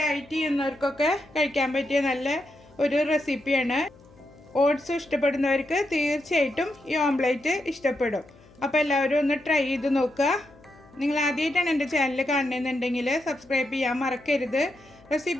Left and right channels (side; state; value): left; noise; hum, 26 dB below the sound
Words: ചെയ്യുന്നവർക്കൊക്കെ കഴിക്കാൻ പറ്റിയ നല്ല ഒരു റെസിപ്പിയാണ്. ഓട്സ് ഇഷ്ടപ്പെടുന്നവർക്ക് തീർച്ചയായിട്ടും ഈ ഓംലെറ്റ് ഇഷ്ടപ്പെടും. അപ്പോൾ എല്ലാവരും ഒന്ന് ട്രൈ ചെയ്ത് നോക്കുക. നിങ്ങൾ ആദ്യമായിട്ടാണ് എൻ്റെ ചാനൽ കാണുന്നതെന്നുണ്ടെങ്കിൽ സബ്സ്ക്രൈബ് ചെയ്യാൻ മറക്കരുത്.